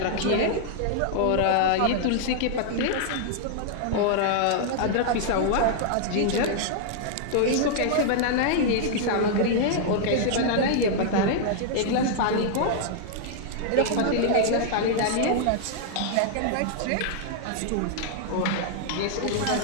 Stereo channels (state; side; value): different; both; correlation -0.01